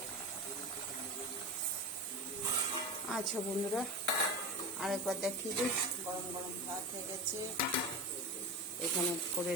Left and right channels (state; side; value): normal; both; correlation 0.27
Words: আচ্ছা বন্ধুরা, আরেকবার দেখিয়ে দিই। গরম গরম ভাত হয়ে গেছে, এখানে করে